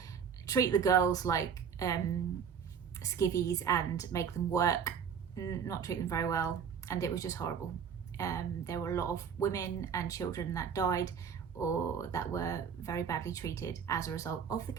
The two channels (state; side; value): quieter; left; 7.2 dB